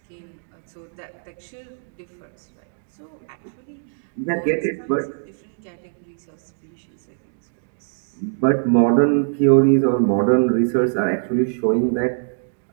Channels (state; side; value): silent; left; digital silence